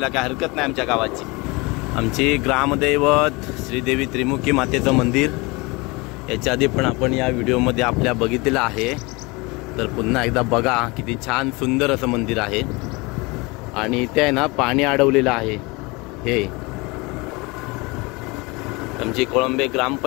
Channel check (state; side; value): quieter; right; 25.6 dB